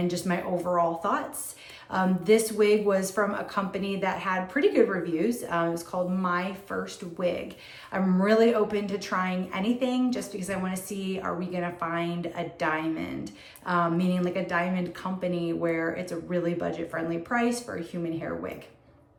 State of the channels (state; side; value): identical; both; correlation 1.00